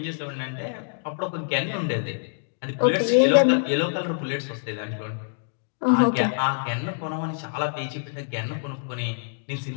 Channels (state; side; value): silent; right; digital silence